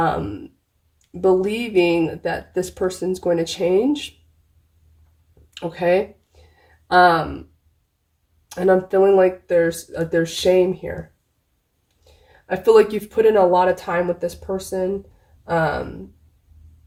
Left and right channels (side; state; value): both; identical; correlation 1.00